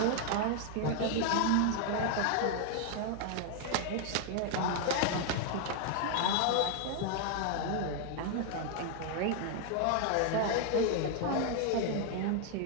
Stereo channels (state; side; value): different; both; correlation 0.00